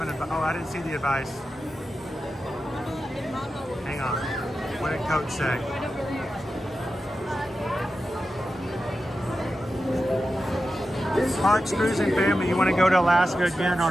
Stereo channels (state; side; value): normal; both; correlation 0.91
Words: advice? Oh, I didn't see the advice. Hang on. What did Coach say? Parks, Cruising Family, you want to go to Alaska again